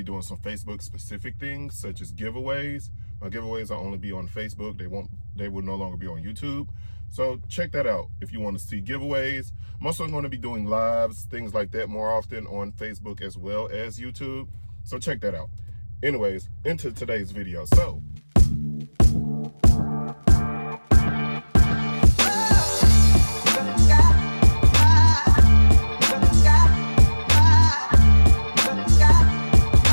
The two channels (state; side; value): inverted; both; correlation -1.00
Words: doing some Facebook specific things such as giveaways. My giveaways will only be on Facebook. They will no longer be on YouTube. So check that out if you want to see giveaways. I'm also going to be doing lives, things like that more often on Facebook as well as YouTube. So check that out. Anyways, into today's video. So